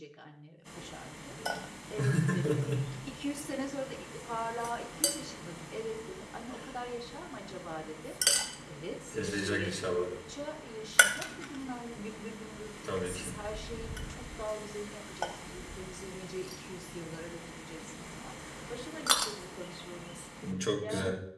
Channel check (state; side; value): identical; both; correlation 1.00